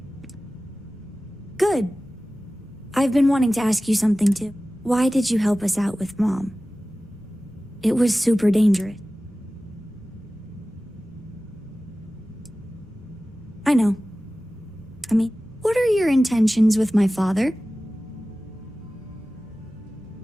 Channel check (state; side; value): normal; both; correlation 0.96